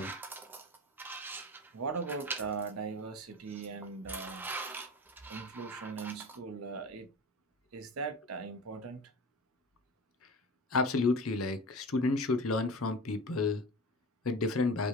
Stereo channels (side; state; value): both; normal; correlation 0.33